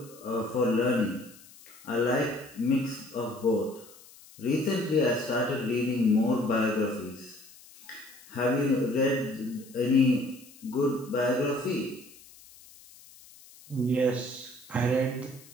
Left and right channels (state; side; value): noise; left; hiss, 22 dB below the sound